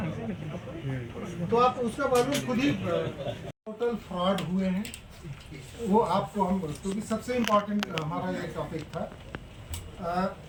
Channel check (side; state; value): both; identical; correlation 1.00